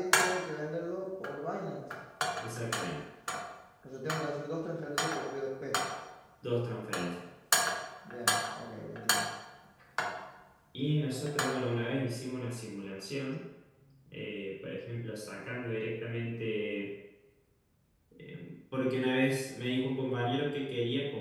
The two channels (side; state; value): both; identical; correlation 1.00